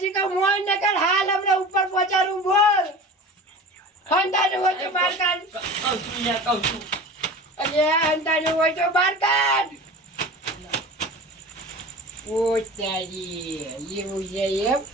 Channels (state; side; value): normal; both; correlation 0.36